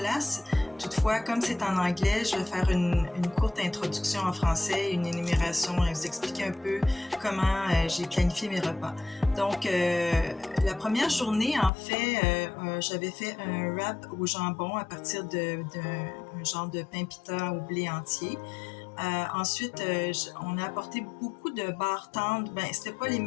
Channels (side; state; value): right; drops out; at 11.7 s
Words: Toutefois, comme c'est en anglais, je vais faire une courte introduction en français, une énumération et vous expliquer un peu comment j'ai planifié mes repas. Donc, la première journée, en fait, j'avais fait un wrap au jambon à partir d'un genre de pain pita au blé entier. Ensuite, on a apporté beaucoup de barres tendres. Ben,